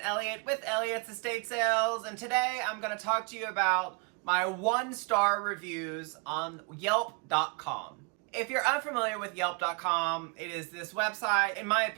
with Elliott's Estate Sales, and today I'm going to talk to you about my 1-star reviews on Yelp.com. If you're unfamiliar with Yelp.com, it is this website, in my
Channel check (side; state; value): left; quieter; 32.1 dB